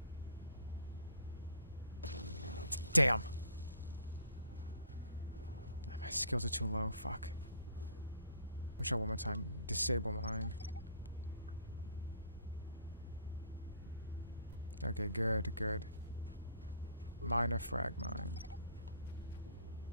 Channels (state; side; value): inverted; both; correlation -0.58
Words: Damn. My skills are too low. Fuck. Let me try one more time. Disable mine. Okay, good, good. Minor frag mine.